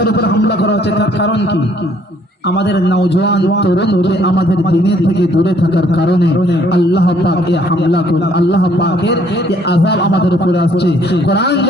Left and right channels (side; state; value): both; normal; correlation 0.63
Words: উপর হামলা করা হচ্ছে। তার কারণ কি? আমাদের নওজোয়ান তরুণকে আমাদের দ্বীনের থেকে দূরে থাকার কারণে আল্লাহ পাক এই হামলা করে, আল্লাহ পাকের এই আযাব আমাদের উপরে আসছে। কোরআন